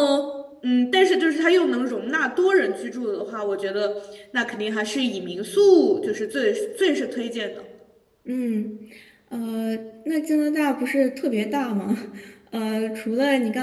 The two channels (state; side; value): identical; both; correlation 1.00